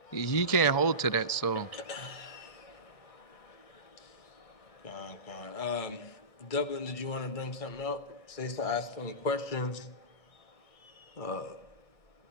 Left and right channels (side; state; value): right; late; 1.6 ms